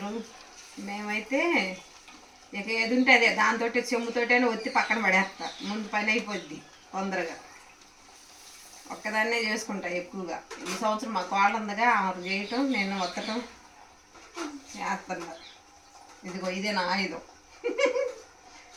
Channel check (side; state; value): both; identical; correlation 1.00